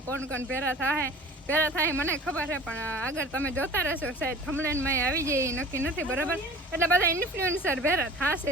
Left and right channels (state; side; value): normal; both; correlation 0.42